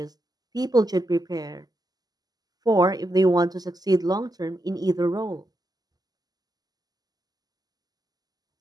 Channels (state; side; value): late; left; 0.19 ms